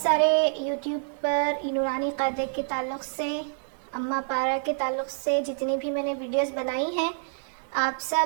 سارے یوٹیوب پر نورانی قاعدے کے تعلق سے، اماں پارہ کے تعلق سے جتنی بھی میں نے ویڈیوز بنائی ہیں، آپ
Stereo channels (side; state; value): left; silent; digital silence